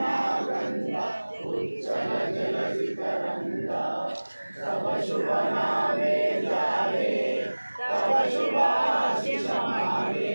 गंगा उच्चल जलधि तरंगा तव शुभ नामे जाए तव शुभाशिष मागे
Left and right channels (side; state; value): both; inverted; correlation -1.00